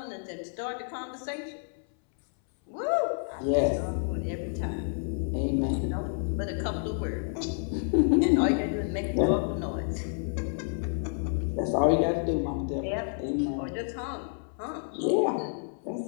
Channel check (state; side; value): silent; right; 58 dB below the other